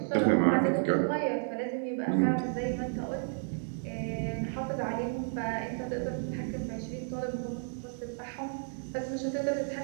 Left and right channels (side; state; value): left; silent; digital silence